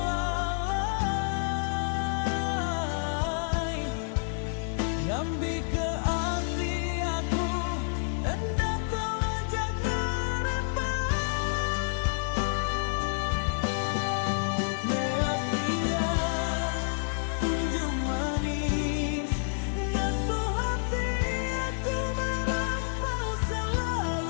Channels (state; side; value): silent; right; 59 dB below the other